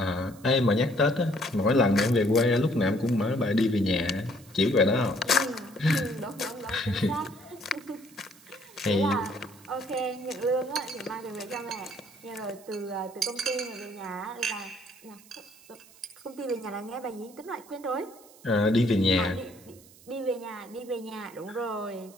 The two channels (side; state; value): right; noise; hiss, 24 dB below the sound